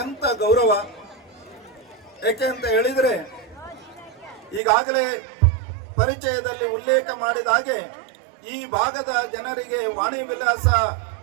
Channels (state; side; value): drops out; left; at 4.6 s